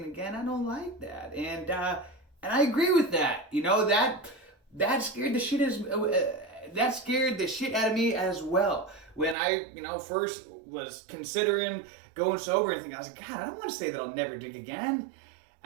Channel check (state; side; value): drops out; left; at 9.3 s